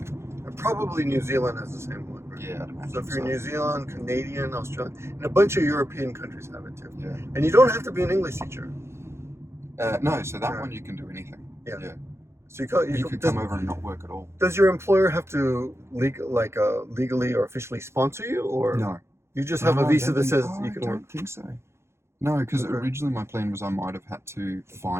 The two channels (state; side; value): late; left; 0.13 ms